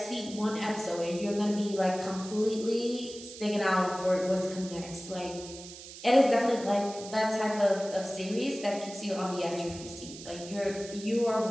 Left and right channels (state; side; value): noise; right; hiss, 14 dB below the sound